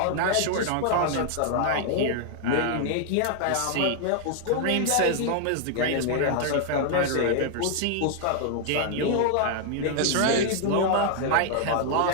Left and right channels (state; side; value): different; both; correlation 0.00